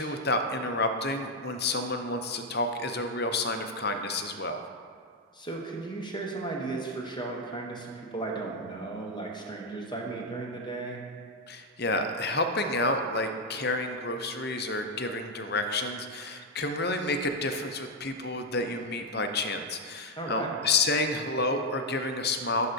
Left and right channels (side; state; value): both; normal; correlation 0.02